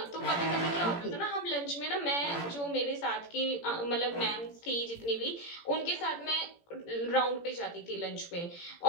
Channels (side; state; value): right; late; 17 ms